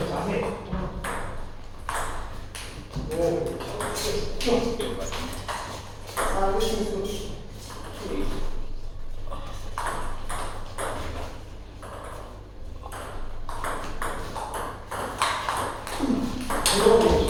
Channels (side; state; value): both; identical; correlation 1.00